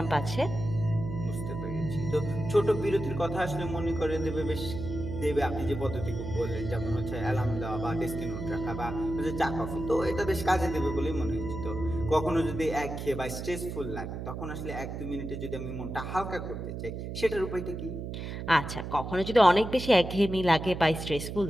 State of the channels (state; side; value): noise; right; hum, 6 dB below the sound